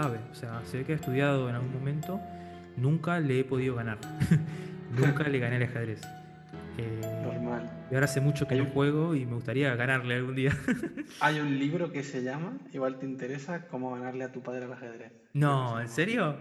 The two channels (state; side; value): identical; both; correlation 1.00